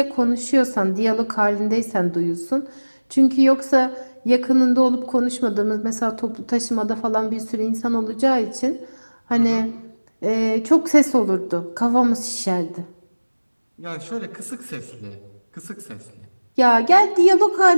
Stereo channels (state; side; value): inverted; both; correlation -1.00